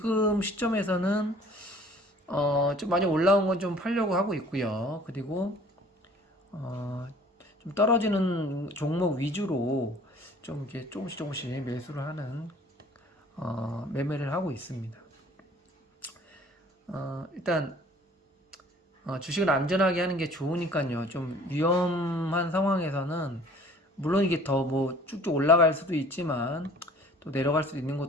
시점에서는 좀 많이 올라온 건 좀 팔려고 하고 있고요. 그리고 좀 떨어지는 종목 위주로 좀 이렇게 조금씩 매수를 하는 매매를 하고 있습니다. 일단 주식을 안전하게 하는 게 좋으니까요. 좀 위험한 상황에서는 물론 이게 더 뭐 쭉쭉 올라갈 수도 있지만 또 내려갈 수도 있는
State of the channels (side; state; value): both; normal; correlation 0.51